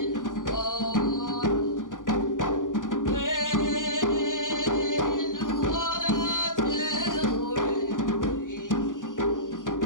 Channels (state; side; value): late; right; 0.88 ms